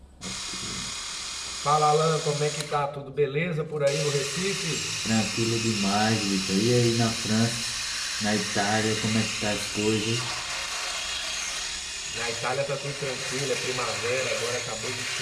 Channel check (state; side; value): identical; both; correlation 1.00